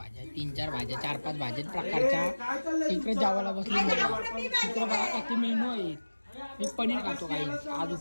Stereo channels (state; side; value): inverted; both; correlation -1.00